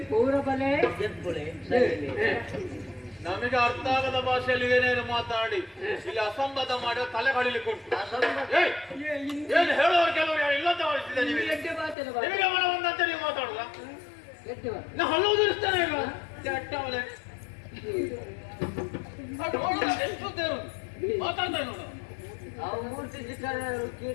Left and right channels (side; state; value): right; drops out; at 12.0 s